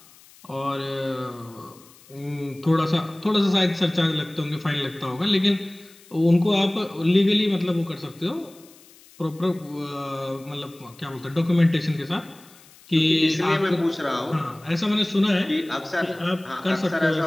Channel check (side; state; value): left; noise; hiss, 25 dB below the sound